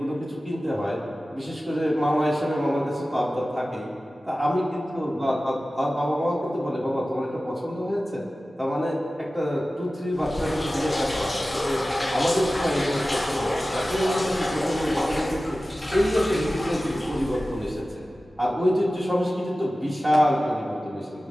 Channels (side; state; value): both; normal; correlation 0.96